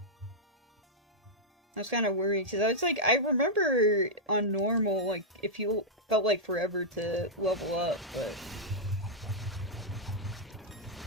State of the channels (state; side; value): normal; both; correlation -0.07